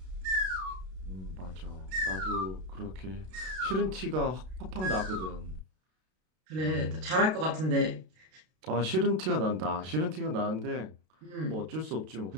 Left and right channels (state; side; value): late; left; 32 ms